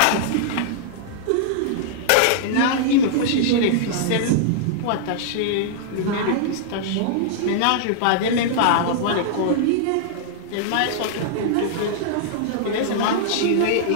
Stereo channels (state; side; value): different; both; correlation -0.01